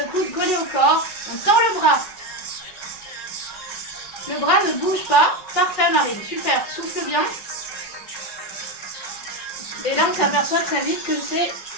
coude collé au corps, on tend le bras. Le bras ne bouge pas. Parfait Marine, super, souffle bien. Et là on s'aperçoit très vite que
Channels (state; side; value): late; right; 5.4 ms